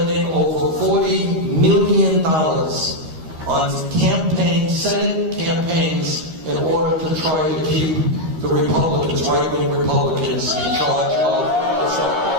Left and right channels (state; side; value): late; left; 13 ms